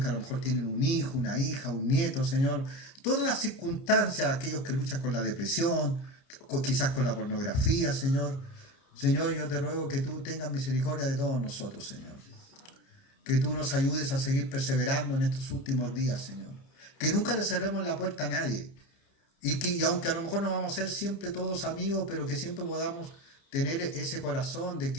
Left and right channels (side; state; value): right; late; 29 ms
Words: a lo mejor tienen un hijo, una hija, un nieto, Señor. Todas las circunstancias, aquellos que luchan con la depresión, quizás con la pornografía, Señor. Señor, yo te ruego que tú tengas misericordia de todos nosotros, Señor. Que tú nos ayudes a seguir perseverando en estos últimos días, Señor. Que nunca le cerremos la puerta a nadie. Y aunque a lo mejor no vamos a ser siempre todos amigos, pero que siempre podamos tener ese corazón de